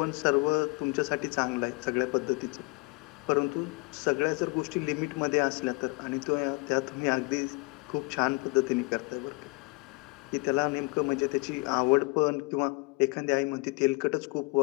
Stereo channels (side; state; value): right; quieter; 27.3 dB